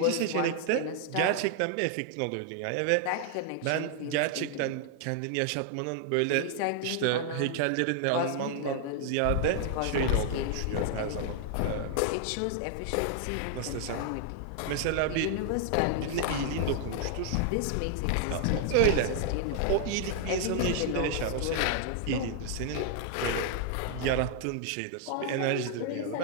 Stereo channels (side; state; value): both; different; correlation 0.00